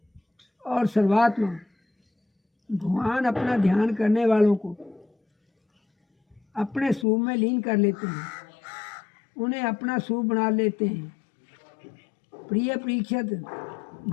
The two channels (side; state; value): right; drops out; at 7.1 s